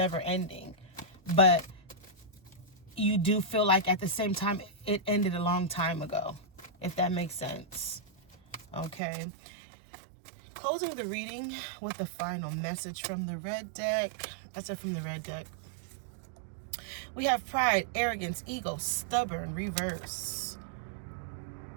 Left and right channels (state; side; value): drops out; left; at 9.0 s